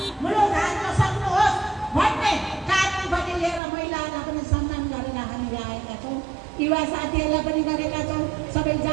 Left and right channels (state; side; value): drops out; left; at 3.6 s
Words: मुलुक हाल्न सक्नुहोस् भन्ने कानुन पनि लिएर महिलाहरूलाई पनि सम्मान गरेर हामीले आएका छौँ। युवा साथीहरूलाई पनि गरेका छौँ। सबै